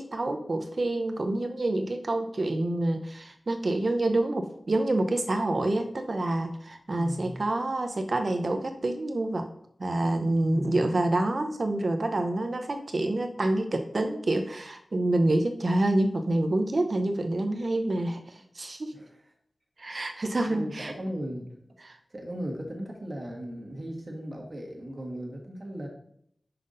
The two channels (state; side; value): normal; both; correlation 0.97